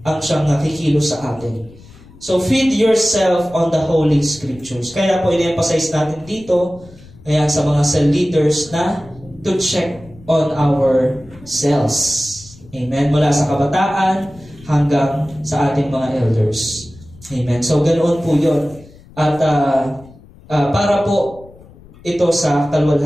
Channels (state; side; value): noise; left; rumble, 23 dB below the sound